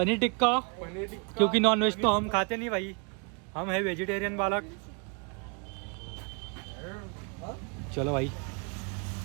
टिक्का, टिक्का क्योंकि नॉन वेज तो हम खाते नहीं भाई, हम है वेजिटेरियन बालक. चलो भाई,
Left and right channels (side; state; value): left; quieter; 35.1 dB